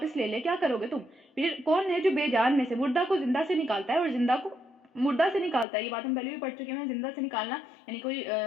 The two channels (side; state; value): right; drops out; at 5.7 s